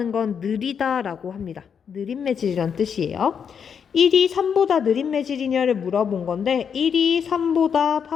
건 느리다라고 합니다. 느린 매질이란 뜻이에요. 1이 3보다 느린 매질이냐를 물어본 건데 1이 3보다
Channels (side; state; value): right; quieter; 7.1 dB